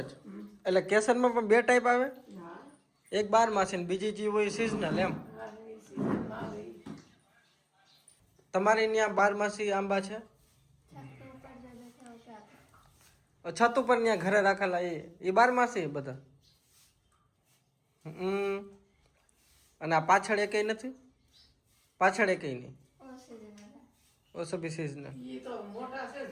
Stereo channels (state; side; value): identical; both; correlation 1.00